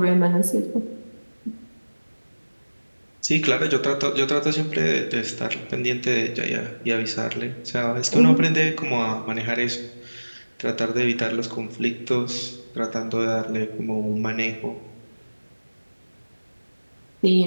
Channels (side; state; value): both; inverted; correlation -1.00